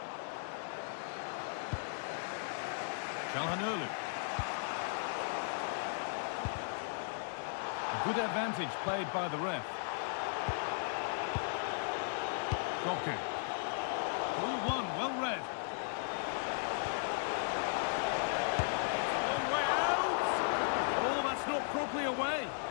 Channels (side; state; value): right; silent; digital silence